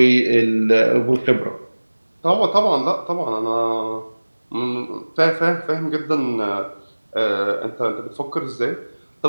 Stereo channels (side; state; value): both; inverted; correlation -1.00